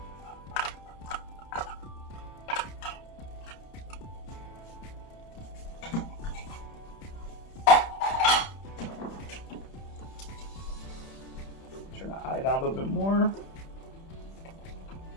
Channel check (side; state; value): right; late; 31 ms